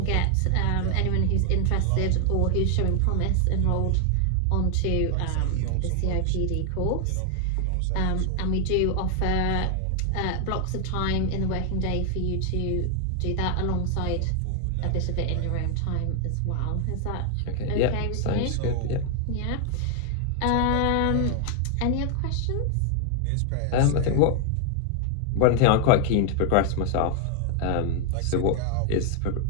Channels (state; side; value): different; both; correlation 0.00